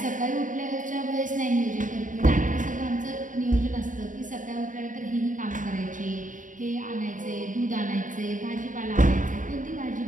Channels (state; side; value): late; left; 0.38 ms